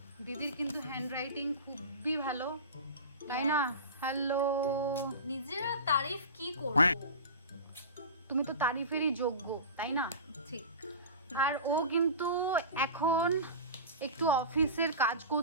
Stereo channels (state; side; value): inverted; both; correlation -0.31